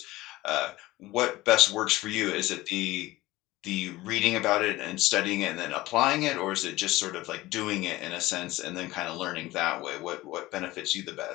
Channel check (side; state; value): right; quieter; 18.4 dB